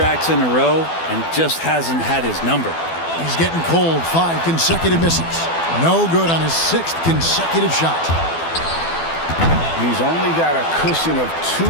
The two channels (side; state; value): right; late; 12 ms